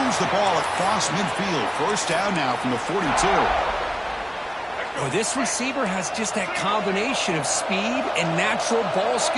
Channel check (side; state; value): both; identical; correlation 1.00